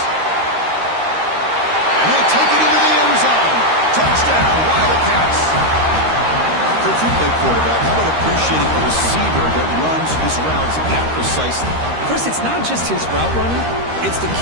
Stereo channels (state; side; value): late; left; 13 ms